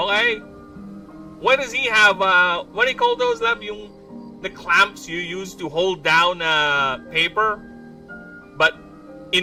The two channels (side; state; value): both; identical; correlation 1.00